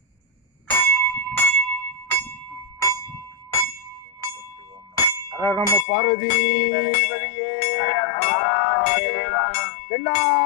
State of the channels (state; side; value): drops out; right; at 5.9 s